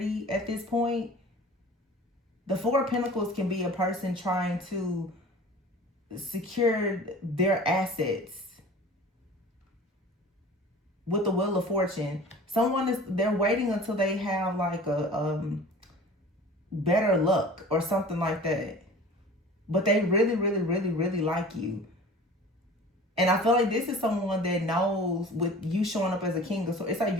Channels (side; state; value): both; normal; correlation 0.42